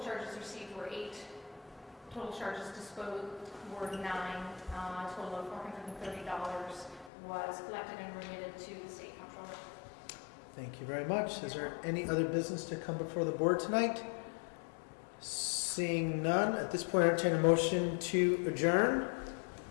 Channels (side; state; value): right; drops out; at 7.1 s